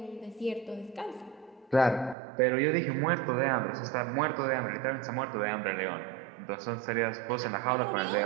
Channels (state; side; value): drops out; left; at 2.1 s